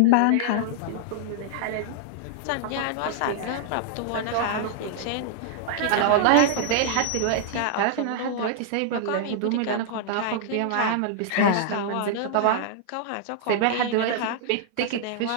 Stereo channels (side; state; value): both; different; correlation -0.01